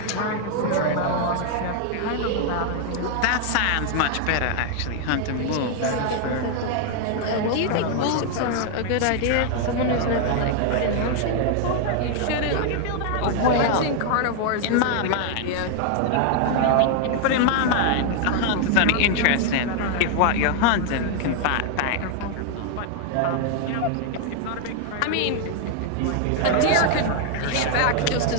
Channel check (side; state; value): both; different; correlation 0.00